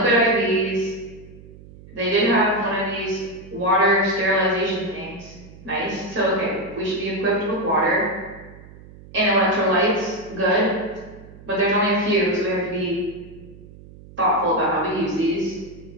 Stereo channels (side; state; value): right; noise; hum, 19 dB below the sound